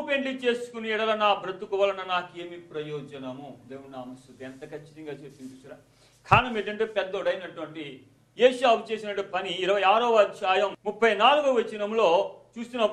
పెళ్లి చేసుకుని ఎడల నా బ్రతుకు వలన నాకేమి ప్రయోజనము. దేవుని నామ స్తుతి. ఎంత ఖచ్చితంగా చెప్పింది చూసారా. కారణం ఏంటంటే పెద్దోడైనటువంటి ఏశావు చేసినటువంటి పని 26వ అధ్యాయం 34వ వచనంలో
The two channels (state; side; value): identical; both; correlation 1.00